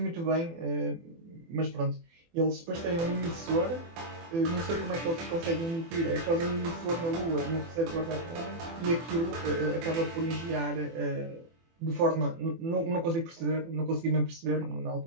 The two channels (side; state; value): left; late; 24 ms